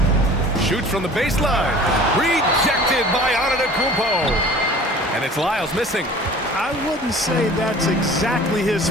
Shoots from the baseline. Rejected by Antetokounmpo. And it's Lyles missing. I wouldn't say that's exactly his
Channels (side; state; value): both; normal; correlation 0.45